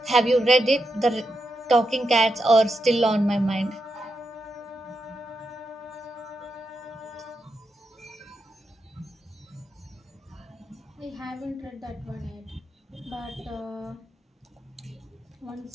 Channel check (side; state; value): both; normal; correlation 0.86